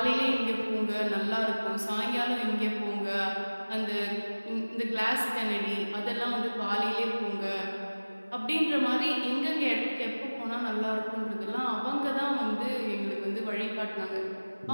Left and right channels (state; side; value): inverted; both; correlation -1.00